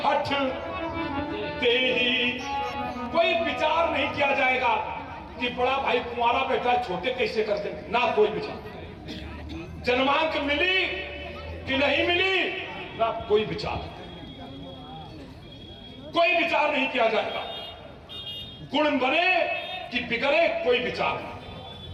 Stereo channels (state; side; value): identical; both; correlation 1.00